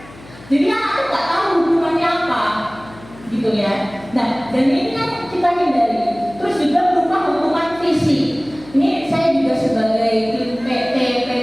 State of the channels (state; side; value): noise; left; hum, 21 dB below the sound